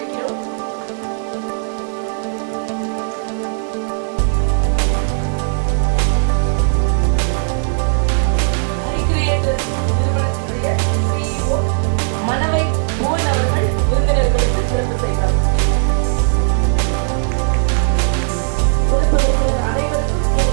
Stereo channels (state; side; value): silent; left; digital silence